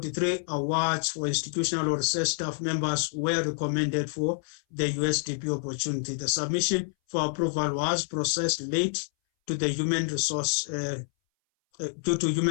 awards for institutional or research staff members were recommended for the USDP opportunity. The submission for approval was processed late to the human resource due to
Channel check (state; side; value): silent; right; 59 dB below the other